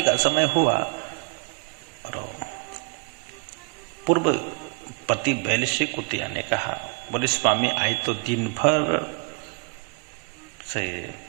का समय हुआ और पूर्व पति बैल से कुतिया ने कहा, बोले स्वामी आज तो दिन भर से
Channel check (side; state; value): left; quieter; 32.9 dB